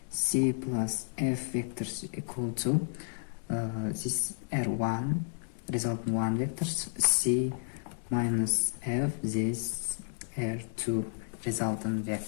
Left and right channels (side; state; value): right; silent; digital silence